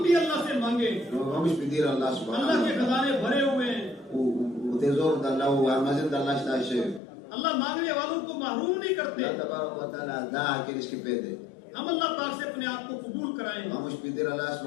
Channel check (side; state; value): right; drops out; at 7.0 s